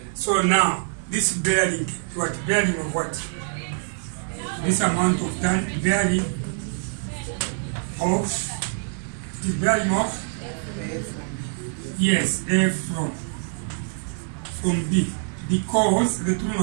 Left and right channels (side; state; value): left; silent; 62 dB below the other